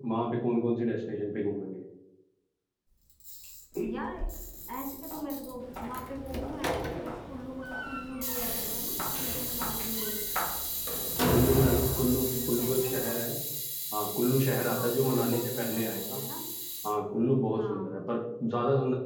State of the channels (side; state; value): both; identical; correlation 1.00